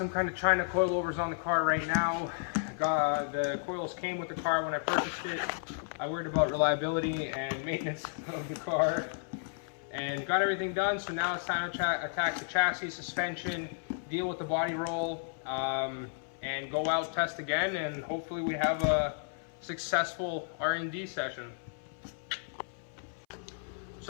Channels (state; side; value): silent; right; 55 dB below the other